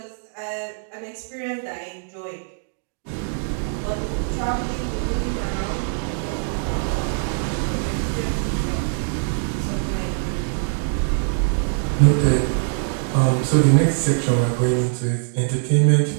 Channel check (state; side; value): silent; left; digital silence